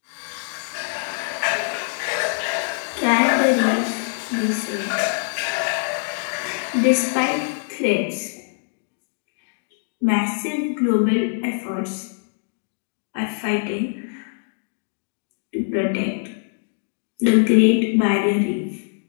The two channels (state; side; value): silent; right; digital silence